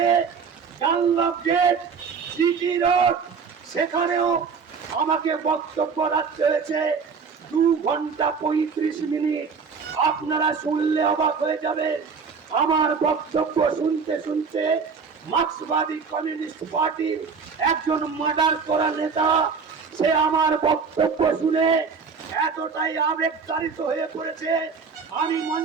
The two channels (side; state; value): left; quieter; 5.5 dB